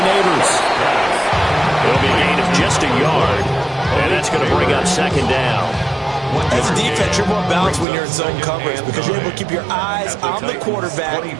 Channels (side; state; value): left; drops out; at 7.9 s